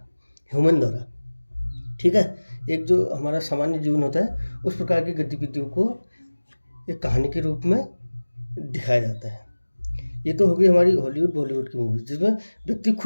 ह्यूमन द्वारा, ठीक है। एक जो हमारा सामान्य जीवन होता है, उस प्रकार की गतिविधियों को एक कहानी के रूप में दिखाया जाता है। ये तो हो गई हमारी हॉलीवुड बॉलीवुड की मूवी, जिसमें व्यक्ति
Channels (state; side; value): inverted; both; correlation -1.00